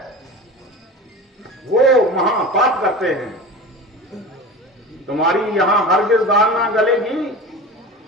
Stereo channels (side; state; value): both; normal; correlation 0.32